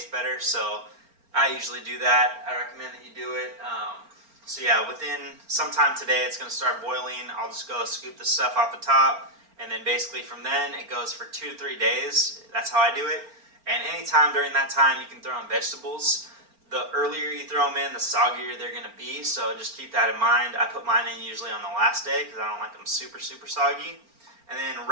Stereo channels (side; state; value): left; late; 4.4 ms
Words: better. So I usually do that. I recommend that you do it. So yeah, within some time today, it's going to start boiling. I'll just go scoop the stuff off the top, and then basically from then it goes for 2 to 3 days. That's how I do it. And anytime during that time, you can throw in vegetables. The earlier you throw them in, the soggier they're going to be. So just keep that in mind. I put mine in usually on the last day because I don't like them super, super soggy. And then